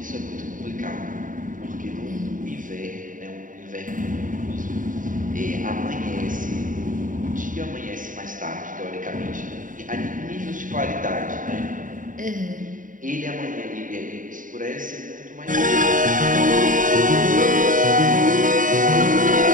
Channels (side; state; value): left; late; 0.38 ms